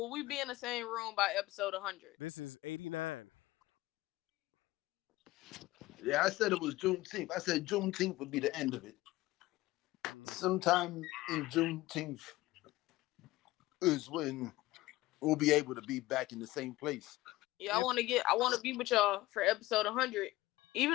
we be in the same room by episode 100? Yeah, I said it was Juneteenth. I said Juneteenth would be the end of it. Sometime in Juneteenth is when we'll be able to be back in the same place. Yeah, I want to be with y'all for episode 100,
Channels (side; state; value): right; quieter; 18.3 dB